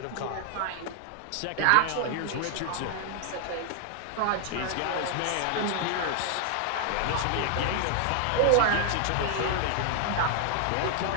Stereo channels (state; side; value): different; both; correlation 0.00